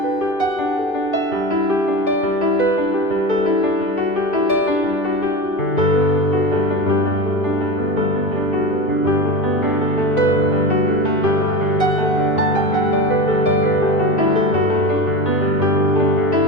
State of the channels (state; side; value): late; right; 2.8 ms